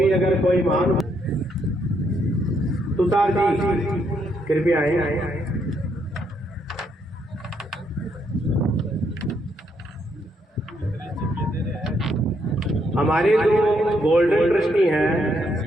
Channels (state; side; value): normal; both; correlation 0.75